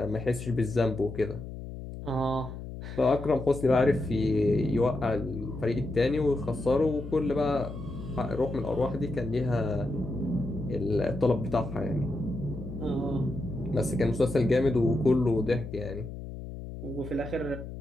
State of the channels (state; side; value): noise; left; hum, 10 dB below the sound